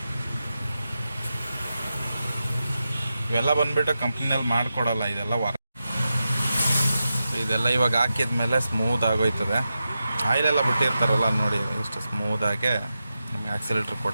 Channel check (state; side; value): inverted; both; correlation -0.90